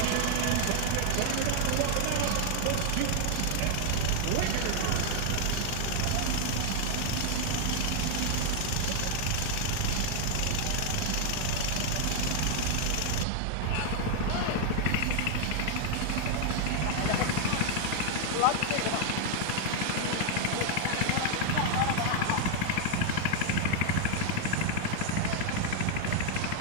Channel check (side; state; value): both; different; correlation 0.00